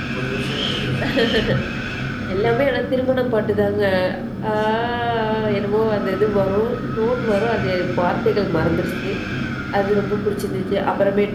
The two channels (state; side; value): identical; both; correlation 1.00